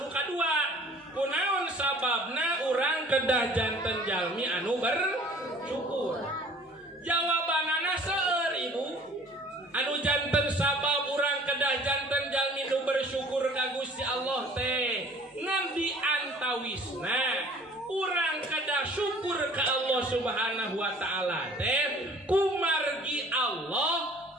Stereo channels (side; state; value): both; normal; correlation 0.50